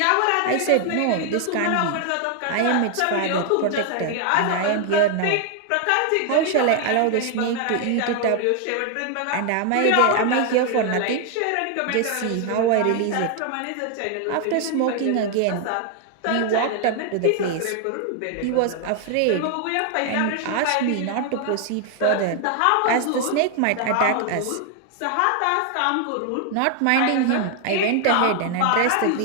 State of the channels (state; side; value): different; both; correlation 0.00